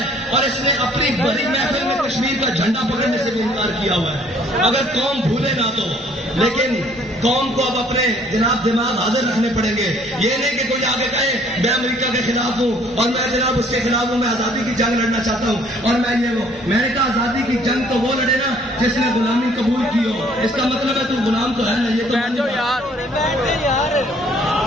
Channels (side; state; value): both; normal; correlation 0.59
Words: اور اس نے اپنی بڑی محفل میں کشمیر کا جھنڈا پکڑنے سے بھی انکار کیا ہوا ہے. اگر قوم بھولے نہ تو، لیکن قوم کو اب اپنے جناب دماغ حاضر رکھنے پڑیں گے. یہ نہیں کہ کوئی آگے کہے میں امریکہ کے خلاف ہوں اور میں جناب اس کے خلاف ہوں، میں آزادی کی جنگ لڑنا چاہتا ہوں اور میں یہ وہ. میں نے کہا آزادی کی جنگ تو وہ لڑے نا جس نے غلامی قبول کی ہو. اس کا مطلب ہے تو غلام تو ہے نا. یہ تو